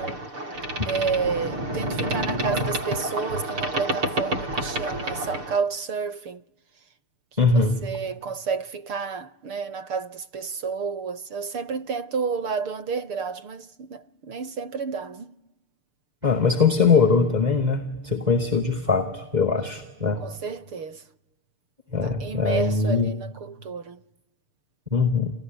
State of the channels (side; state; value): left; late; 6.7 ms